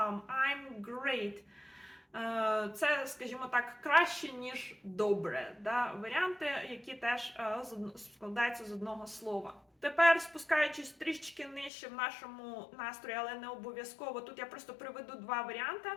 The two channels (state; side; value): drops out; right; at 11.7 s